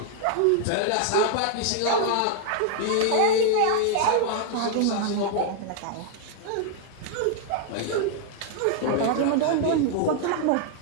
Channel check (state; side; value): different; both; correlation -0.01